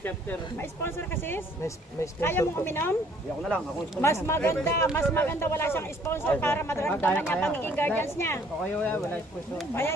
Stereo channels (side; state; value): both; normal; correlation 0.60